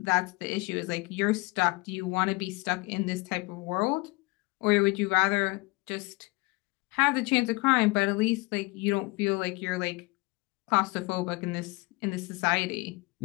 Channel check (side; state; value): right; quieter; 25.3 dB